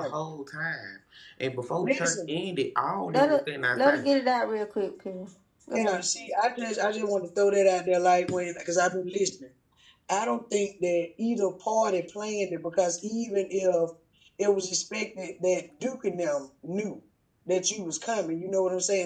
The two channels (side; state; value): both; identical; correlation 1.00